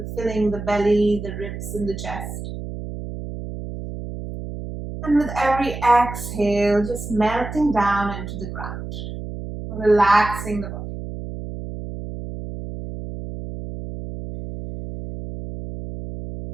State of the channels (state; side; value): noise; right; hum, 8 dB below the sound